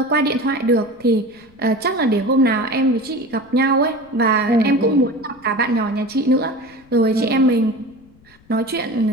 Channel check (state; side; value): noise; left; rumble, 29 dB below the sound